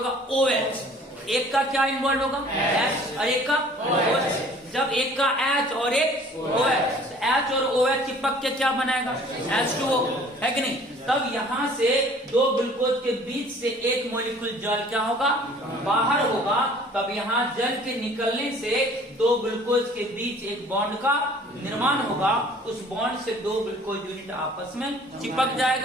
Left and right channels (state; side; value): normal; both; correlation 0.52